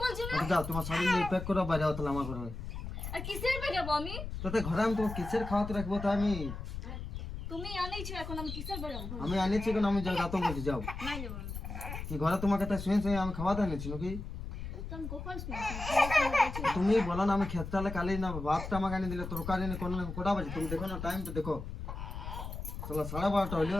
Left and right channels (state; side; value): noise; left; rumble, 7 dB below the sound